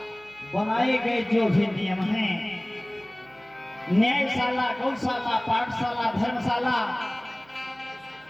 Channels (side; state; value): right; noise; hum, 27 dB below the sound